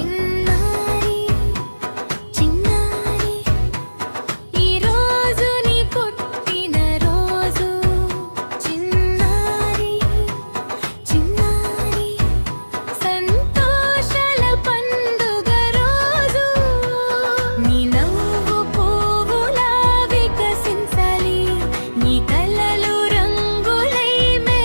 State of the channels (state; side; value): inverted; both; correlation -1.00